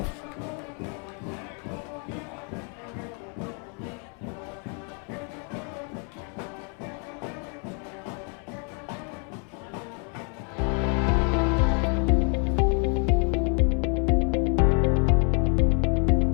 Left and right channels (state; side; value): quieter; right; 39.1 dB